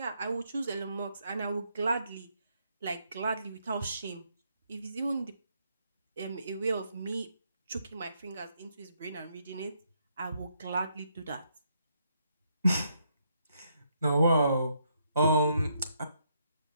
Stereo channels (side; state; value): both; inverted; correlation -0.75